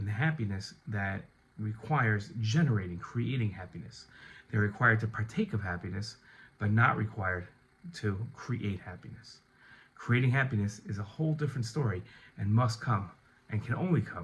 the happiness that requires creating happiness. They're required to partake of happiness, but not required to create happiness. Creating happiness is a whole different story and must come and can only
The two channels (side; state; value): both; identical; correlation 1.00